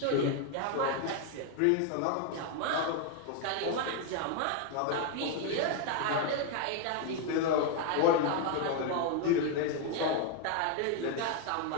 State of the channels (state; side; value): different; both; correlation 0.01